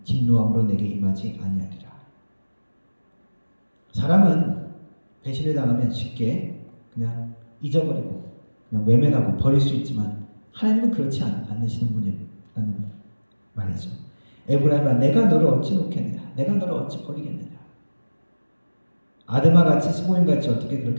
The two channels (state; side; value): inverted; both; correlation -1.00